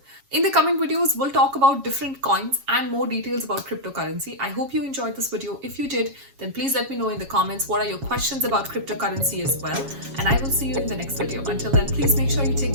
In the coming videos, we'll talk about different coins and more details about cryptocurrency. I hope you enjoyed this video. If you did, then please let me know in the comments what are your questions about cryptocurrency as well. And I will see you in the next video. Until then, please make sure you take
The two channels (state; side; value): late; left; 7.3 ms